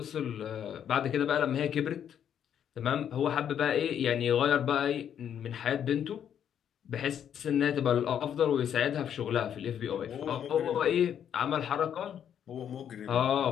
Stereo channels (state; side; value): quieter; right; 9.1 dB